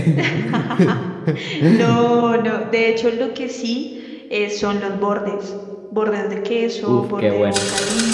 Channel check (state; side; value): identical; both; correlation 1.00